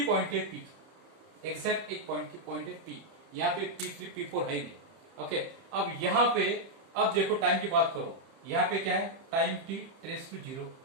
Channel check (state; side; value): late; left; 30 ms